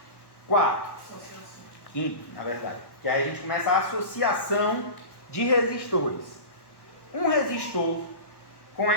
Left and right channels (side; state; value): right; late; 1.1 ms